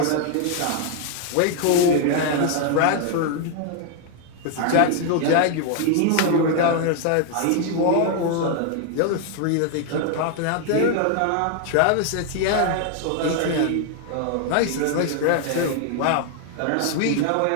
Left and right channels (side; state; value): both; different; correlation 0.00